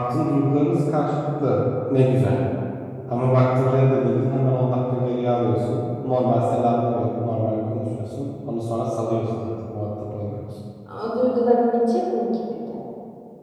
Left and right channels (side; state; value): both; identical; correlation 1.00